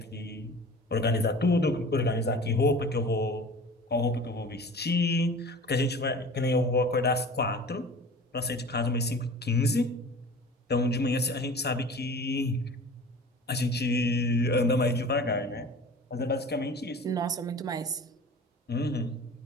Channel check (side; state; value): both; normal; correlation 0.40